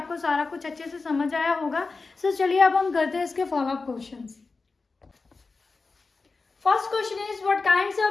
सारा कुछ अच्छे से समझ आया होगा। सो चलिए अब हम करते हैं इसके follow up questions. First question is what kinds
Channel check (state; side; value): quieter; right; 4.0 dB